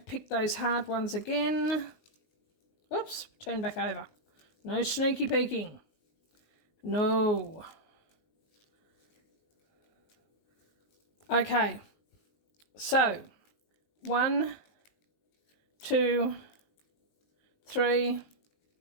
pick those hard ones again. Oops, turn back over. No sneaky peeking. No. Okay, so 1, 2, 3,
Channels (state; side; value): late; right; 19 ms